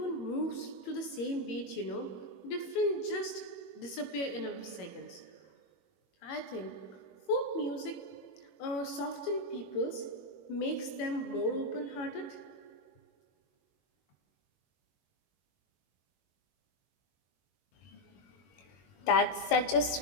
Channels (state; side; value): late; right; 21 ms